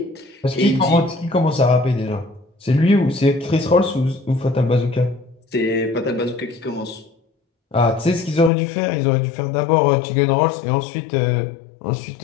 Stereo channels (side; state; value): right; drops out; at 8.5 s